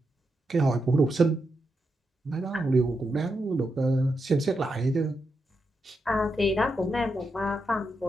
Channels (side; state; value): both; normal; correlation 0.85